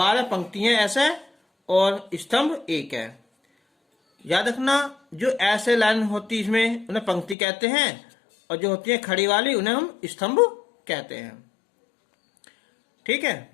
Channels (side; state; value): right; drops out; at 7.4 s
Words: पंक्ति हैं ऐसे और स्तंभ 1 है। याद रखना, जो ऐसे लाइन होती है इसमें उन्हें पंक्ति कहते हैं, और जो होती है खड़ी वाली उन्हें हम स्तंभ कहते हैं। ठीक है,